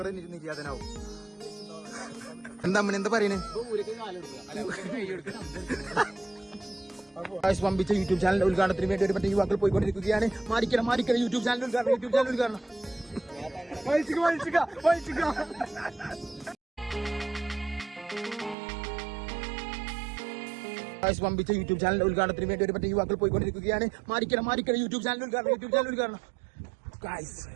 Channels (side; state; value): left; drops out; at 18.6 s